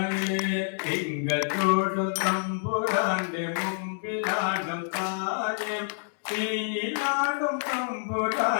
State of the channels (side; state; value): right; silent; 60 dB below the other